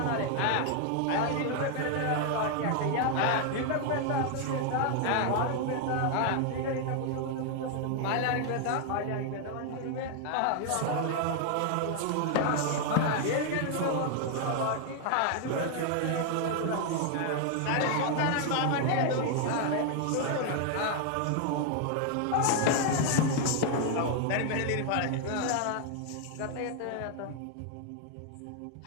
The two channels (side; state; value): both; different; correlation 0.00